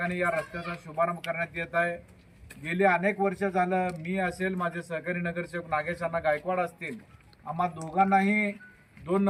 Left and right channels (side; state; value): both; identical; correlation 1.00